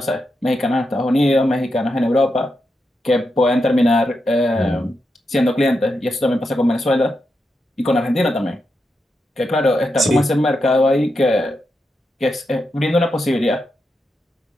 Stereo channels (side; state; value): both; normal; correlation 0.86